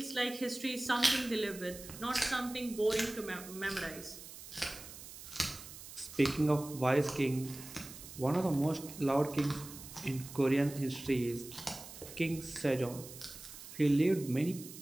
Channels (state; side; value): noise; right; hiss, 14 dB below the sound